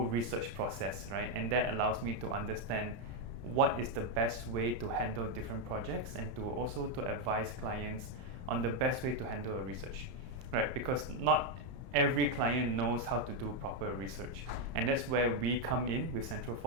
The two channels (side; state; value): left; late; 31 ms